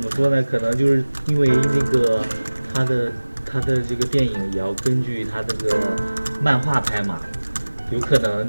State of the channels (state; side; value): inverted; both; correlation -1.00